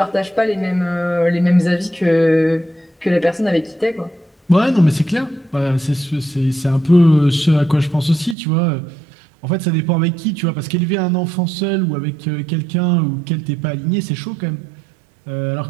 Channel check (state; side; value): drops out; left; at 8.3 s